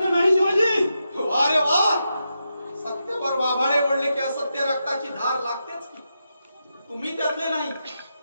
नाही शिवाजी. वा रे वा. सत्तेवर वाभाडे ओढले की असत्य रक्ताची धार लागतेच की. तुम्ही त्यातले नाही.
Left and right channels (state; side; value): inverted; both; correlation -0.86